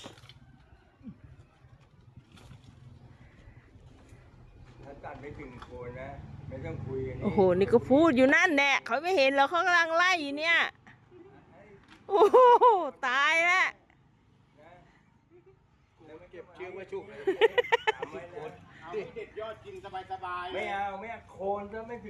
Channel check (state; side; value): identical; both; correlation 1.00